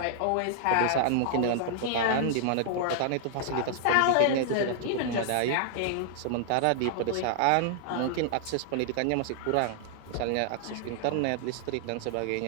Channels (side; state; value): both; different; correlation -0.01